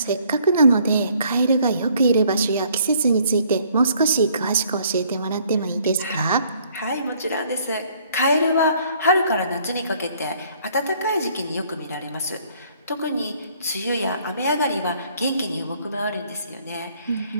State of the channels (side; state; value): both; inverted; correlation -0.62